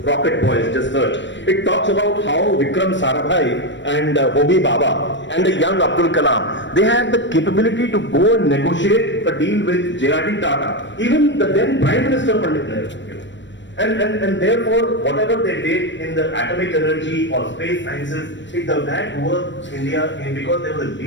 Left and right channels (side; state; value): right; late; 0.53 ms